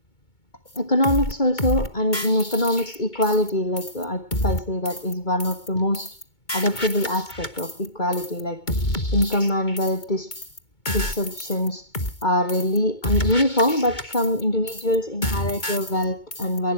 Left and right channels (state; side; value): late; right; 2.2 ms